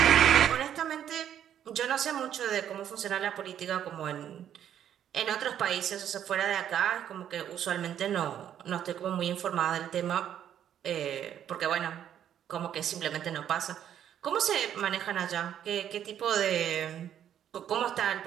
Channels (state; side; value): quieter; left; 10.0 dB